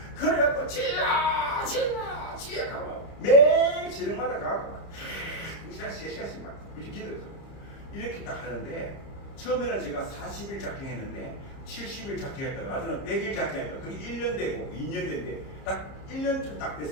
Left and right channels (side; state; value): right; late; 30 ms